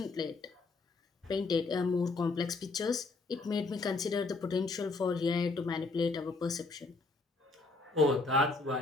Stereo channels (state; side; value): quieter; right; 3.6 dB